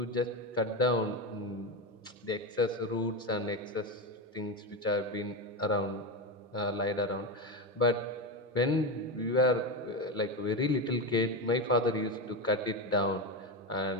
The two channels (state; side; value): normal; both; correlation 0.15